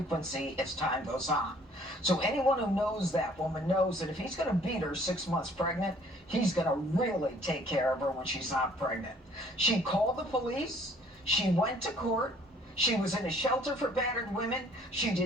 as time goes on. So anyone who knows that woman knows that if he's going to beat her 6 months pregnant, he's going to really take care of her when she's not pregnant. She called the police. She went to court. She was in a shelter for battered women. She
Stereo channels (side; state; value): both; normal; correlation 0.58